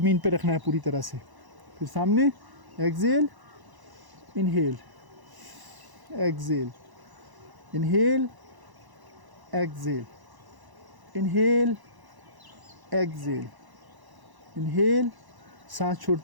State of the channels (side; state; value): left; late; 1.0 ms